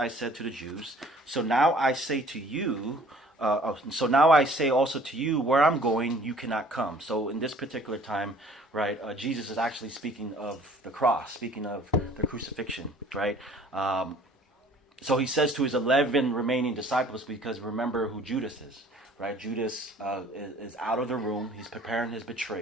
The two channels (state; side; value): normal; both; correlation 0.53